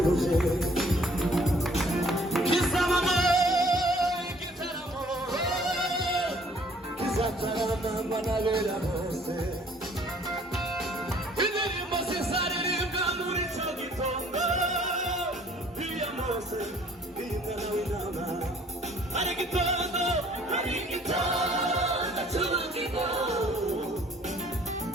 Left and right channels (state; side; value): normal; both; correlation 0.58